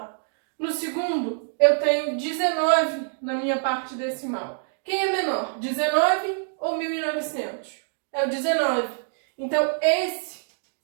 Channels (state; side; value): silent; left; digital silence